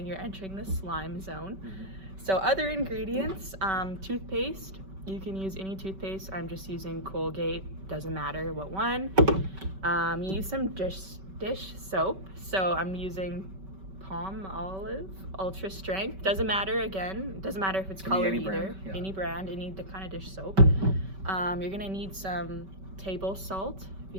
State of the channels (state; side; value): late; left; 5.2 ms